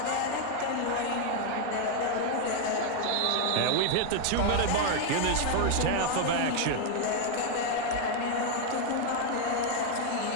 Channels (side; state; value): both; different; correlation 0.00